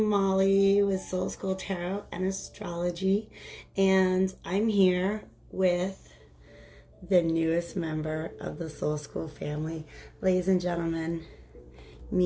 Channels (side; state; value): both; identical; correlation 1.00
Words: with Soul School Tarot and Astrology, and I'm here with the newest member of the Soul School family. Ladies and gentlemen,